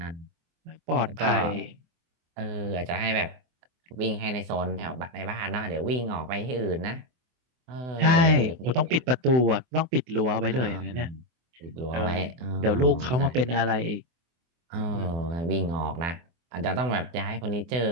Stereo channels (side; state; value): left; late; 24 ms